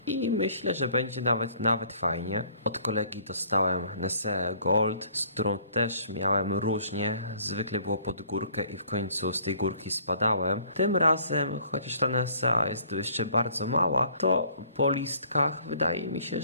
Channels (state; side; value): inverted; both; correlation -0.58